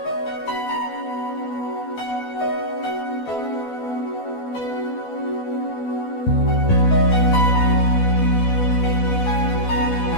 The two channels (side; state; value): right; late; 12 ms